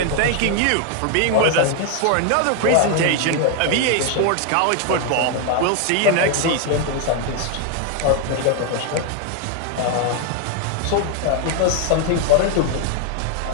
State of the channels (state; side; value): different; both; correlation 0.01